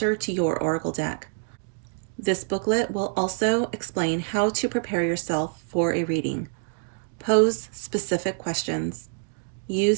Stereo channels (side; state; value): left; silent; digital silence